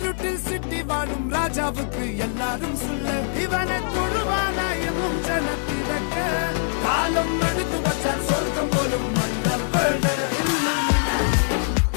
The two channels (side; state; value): right; silent; digital silence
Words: സിറ്റി വാഴും രാജാവുക്ക് എല്ലാരും സുല്ല് ഇവനെ തൊഴുവാനായെന്നും ജനത്തിരക്ക് കാലം എടുത്തു വച്ചാൽ സ്വർഗം പോലും മണ്ണപ്പെട്